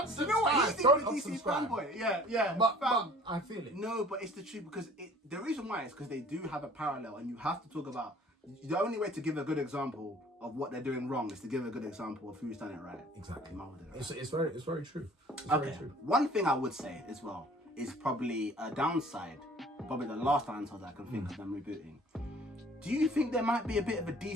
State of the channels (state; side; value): normal; both; correlation 0.50